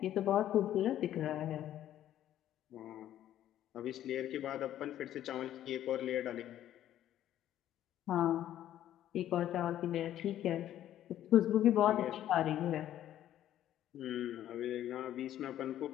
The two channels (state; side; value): quieter; right; 12.0 dB